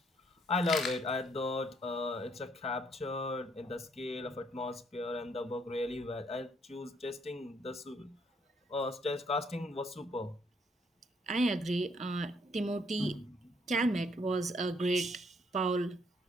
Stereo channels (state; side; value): normal; both; correlation 0.69